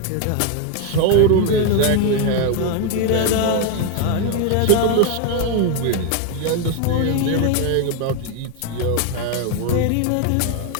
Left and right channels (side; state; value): both; different; correlation 0.01